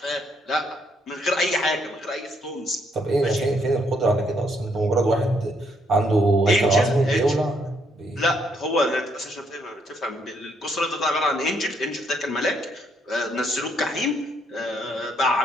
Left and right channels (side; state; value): both; normal; correlation 0.72